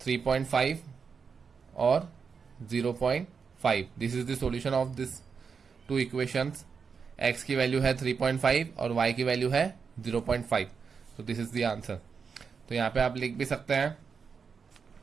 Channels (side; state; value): left; quieter; 5.8 dB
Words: और 0.5. This is the solution of this two equations. x की वैल्यू है 3.5 और y की वैल्यू है 0.5. तो दिस इज द आंसर. तो यहाँ पे आप लिख भी सकते हैं